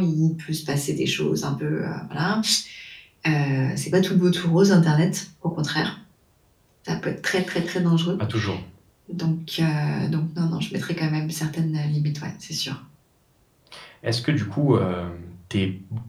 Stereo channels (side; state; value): both; identical; correlation 1.00